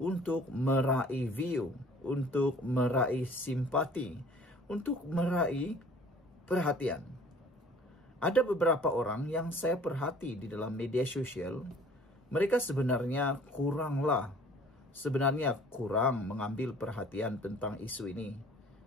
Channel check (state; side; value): normal; both; correlation 0.52